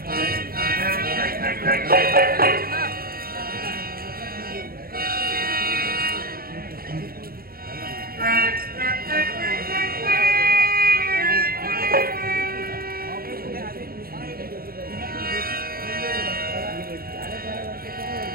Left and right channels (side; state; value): left; late; 0.43 ms